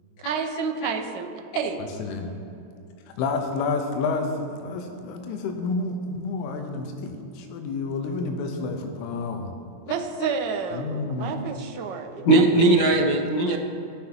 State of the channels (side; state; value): right; late; 23 ms